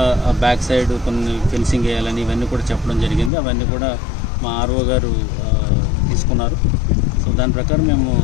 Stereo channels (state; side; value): drops out; right; at 3.3 s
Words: బ్యాక్ సైడ్ కొన్ని ఫెన్సింగ్ వేయాలని ఇవన్నీ కూడా చెప్పడం జరిగింది. అవన్నీ కూడా మా ఆర్ఓ గారు తీసుకున్నారు. సో దాని ప్రకారం మేము